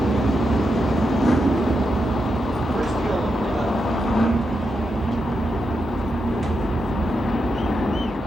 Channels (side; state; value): both; normal; correlation 0.85